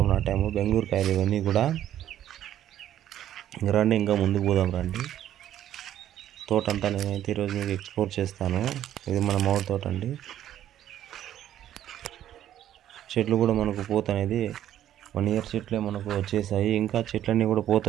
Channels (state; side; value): quieter; left; 11.6 dB